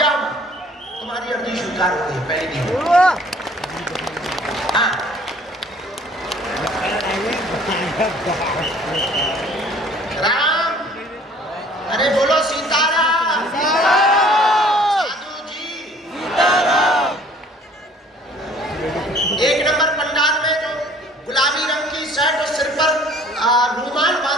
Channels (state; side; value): normal; both; correlation 0.54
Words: माँ, तुम्हारी अर्जी स्वीकार हो गई है पहली दिन। हाँ, राम। अरे बोलो सीताराम। साधु जी। 1 नंबर पंडाल में जो गुलाबी रंग की शर्ट और सिर पर रुमाल